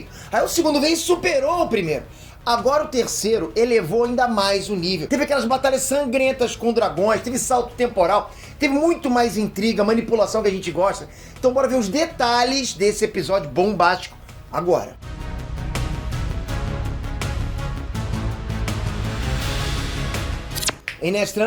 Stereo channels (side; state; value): both; identical; correlation 1.00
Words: Aí o segundo veio e superou o primeiro. Agora o terceiro elevou ainda mais o nível. Teve aquelas batalhas sangrentas com dragões, teve salto temporal, teve muito mais intriga, manipulação que a gente gosta. Então bora ver os detalhes desse episódio bombástico agora.